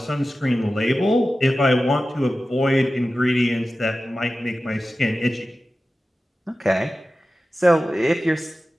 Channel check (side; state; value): both; normal; correlation 0.94